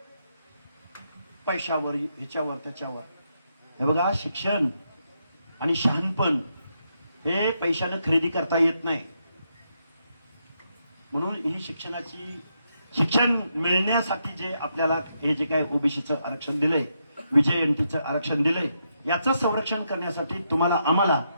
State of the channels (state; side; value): inverted; both; correlation -0.80